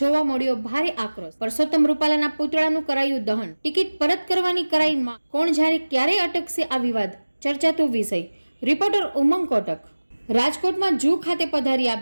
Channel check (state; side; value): inverted; both; correlation -1.00